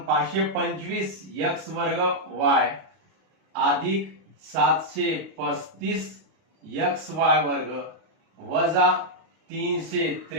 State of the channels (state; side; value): late; left; 32 ms